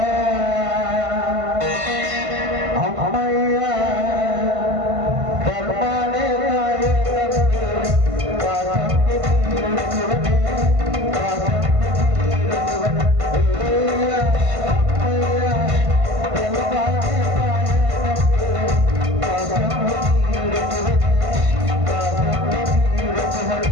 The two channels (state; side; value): late; left; 1.5 ms